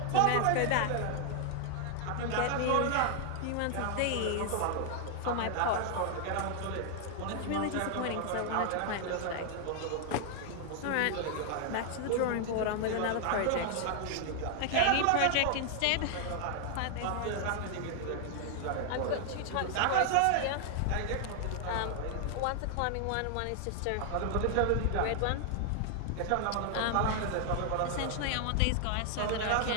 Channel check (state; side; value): different; both; correlation 0.00